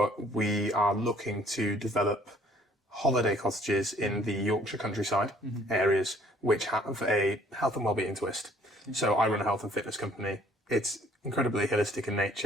we are looking to develop holiday cottages in the Yorkshire countryside areas which have a health and wellbeing twist. So I run a health and fitness company. It's incredibly holistic in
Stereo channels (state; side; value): normal; both; correlation 0.58